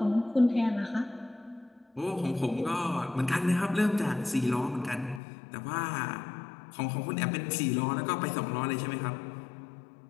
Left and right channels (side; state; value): right; drops out; at 5.2 s